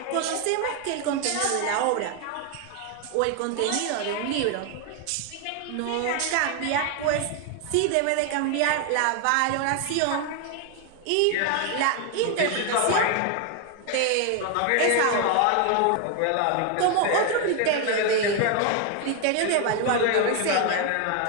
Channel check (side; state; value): both; different; correlation 0.01